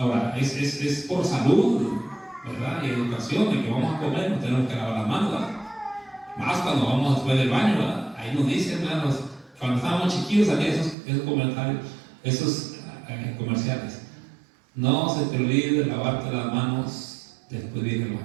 es por salud, ¿verdad? Y educación, de que vamos a comer, no tenemos que lavar las manos, ¿verdad? Más cuando vamos después del baño, ¿verdad? Ahí nos dicen, hermanos, cuando estábamos chiquillos salían esos comentarios, esos comerciales. No se te olvide de lavarte las manos después de ir al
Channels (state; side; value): drops out; left; at 11.0 s